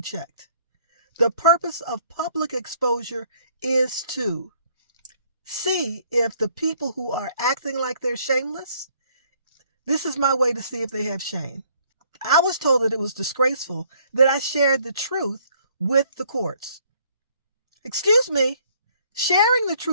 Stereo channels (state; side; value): inverted; both; correlation -0.63